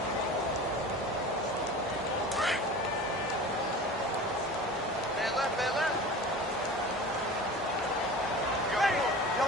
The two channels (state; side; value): normal; both; correlation 0.36